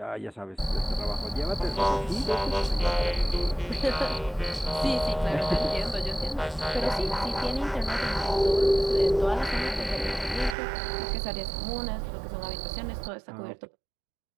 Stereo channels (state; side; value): drops out; left; at 10.6 s